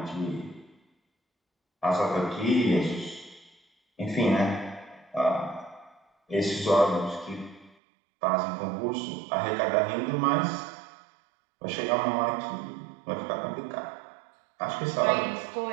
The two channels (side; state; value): left; drops out; at 7.8 s